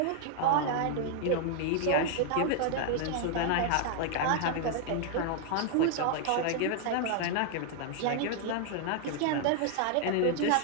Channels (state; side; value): different; both; correlation 0.00